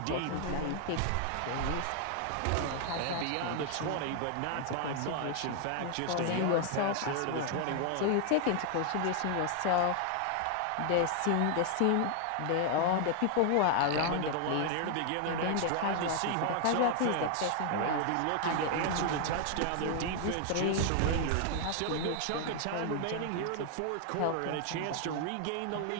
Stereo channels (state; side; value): different; both; correlation 0.00